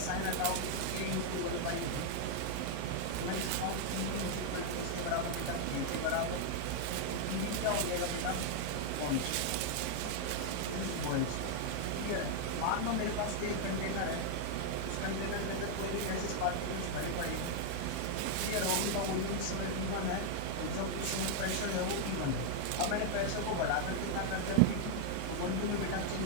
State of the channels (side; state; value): both; different; correlation 0.00